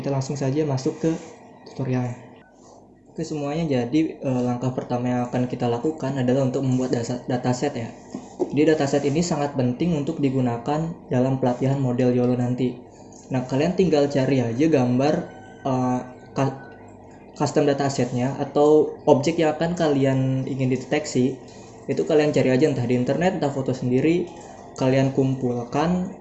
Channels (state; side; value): identical; both; correlation 1.00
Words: langsung saja masuk ke tutorialnya. Oke semuanya, jadi langkah pertama yang akan kita lakukan adalah untuk membuat dataset ya. Jadi dataset ini sangat penting untuk digunakan dalam pelatihan model YOLO nanti. Nah, kalian tinggal cari aja gambar custom datasetnya atau objek yang akan kalian ingin deteksi. Itu kalian cari aja entah di internet, entah foto sendiri, kalian kumpulkan